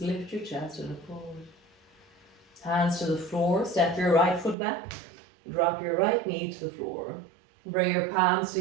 lift your chest and look forward. Hands to the floor, step your right foot back. Drop your right knee to the floor. Bring your palms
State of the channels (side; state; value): left; drops out; at 4.5 s